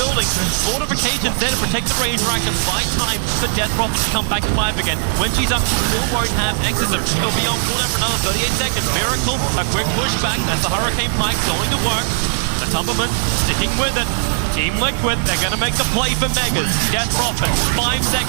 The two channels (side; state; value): left; silent; digital silence